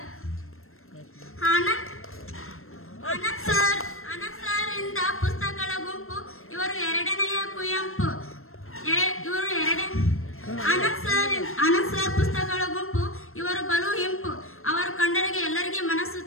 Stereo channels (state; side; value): late; right; 0.62 ms